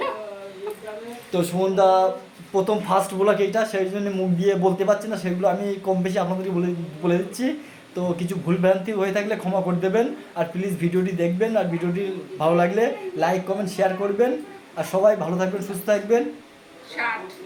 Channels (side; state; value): both; identical; correlation 1.00